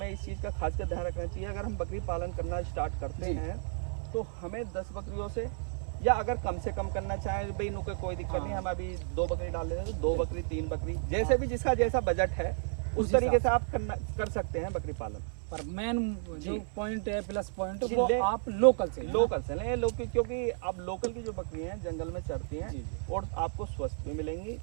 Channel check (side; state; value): left; silent; 56 dB below the other